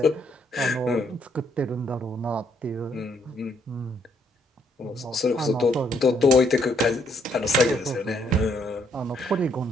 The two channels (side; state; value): both; normal; correlation 0.71